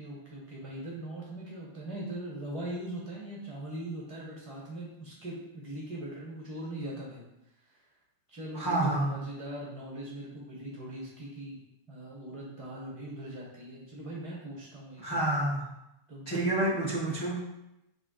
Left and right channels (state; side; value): late; right; 6.5 ms